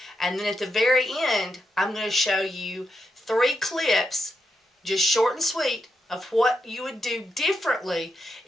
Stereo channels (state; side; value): normal; both; correlation 0.83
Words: And then at the very end, I'm going to show you 3 clips, just short and sweet, of what you would do differently